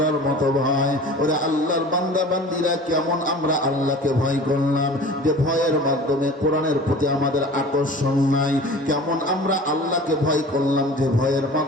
মতো ভয়। ওরা আল্লাহর বান্দা বান্দিরা, কেমন আমরা আল্লাহকে ভয় করলাম, যে ভয়ের মাধ্যমে কোরআনের প্রতি আমাদের আকর্ষণ নাই। কেমন আমরা আল্লাহকে ভয় করলাম, যে ভয়ের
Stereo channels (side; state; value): both; normal; correlation 0.41